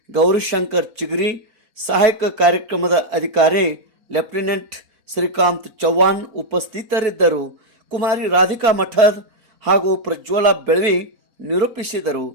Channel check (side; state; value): left; late; 4.3 ms